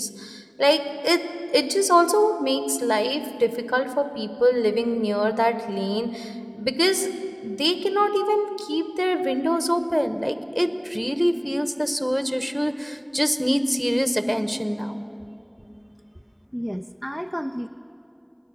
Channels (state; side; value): identical; both; correlation 1.00